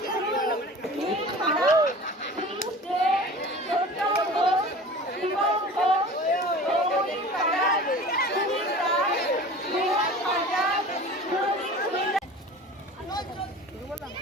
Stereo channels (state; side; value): normal; both; correlation 0.40